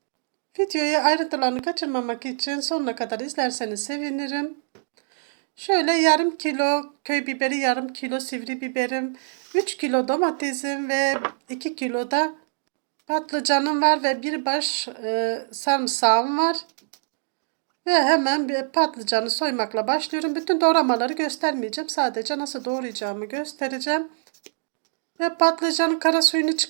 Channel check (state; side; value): silent; left; digital silence